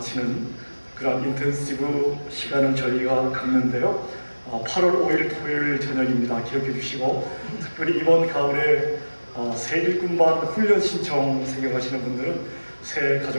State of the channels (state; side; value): inverted; both; correlation -1.00